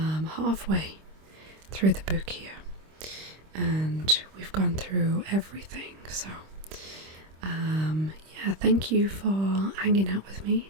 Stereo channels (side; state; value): left; late; 26 ms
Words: halfway through the book here. And we've gone through everything, so yeah, thank you for hanging out with me